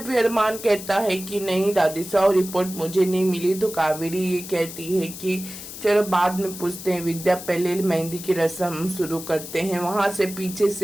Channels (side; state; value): left; noise; hiss, 12 dB below the sound